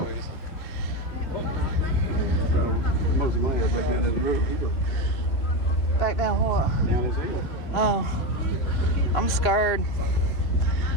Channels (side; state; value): right; late; 2.9 ms